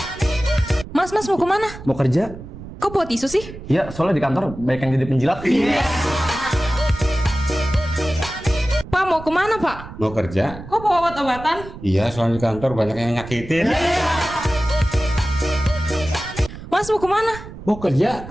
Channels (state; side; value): noise; right; rumble, 14 dB below the sound